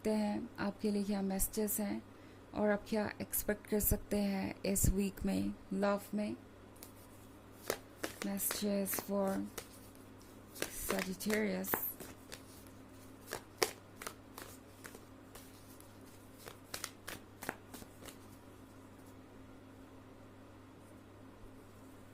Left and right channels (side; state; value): both; identical; correlation 1.00